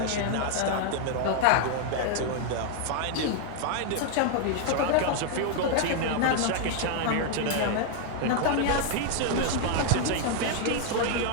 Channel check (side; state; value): both; different; correlation 0.00